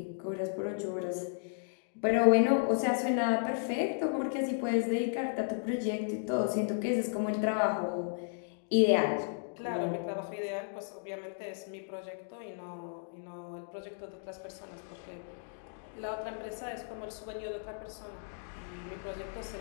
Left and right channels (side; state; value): right; silent; digital silence